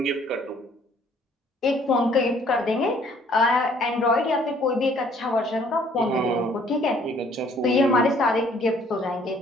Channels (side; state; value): both; normal; correlation 0.60